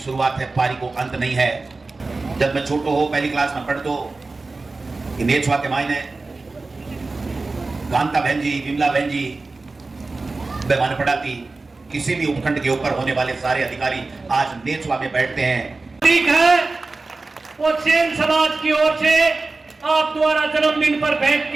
है, पारी को अंत नहीं है। जब मैं छोटो हो पहली क्लास में पढ़ दो कि नेछवा के मायने कांता बहन जी, विमला बहन जी बेमान पढ़ाती। किसी भी उपखंड के ऊपर होने वाले सारे अधिकारी आज नेछवा में बैठते हैं। ठीक है, वो सेन समाज की ओर से आप द्वारा जन्मदिन पर भेंट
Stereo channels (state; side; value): quieter; left; 3.6 dB